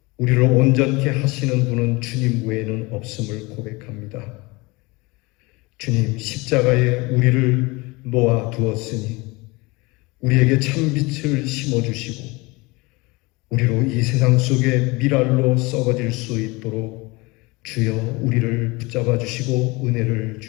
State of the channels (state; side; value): quieter; right; 24.6 dB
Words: 우리를 온전케 하시는 분은 주님 외에는 없음을 고백합니다. 주님, 십자가에 우리를 놓아 두었으니 우리에게 참빛을 심어주시고 우리로 이 세상 속에 미랄로 썩어질 수 있도록 주여 우리를 붙잡아 주시고 은혜를